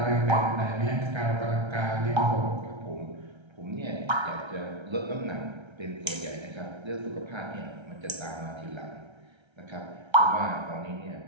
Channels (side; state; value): left; late; 1.3 ms